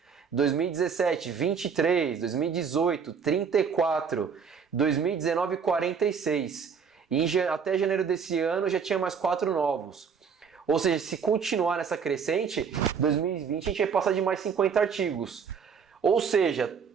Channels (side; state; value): left; quieter; 6.4 dB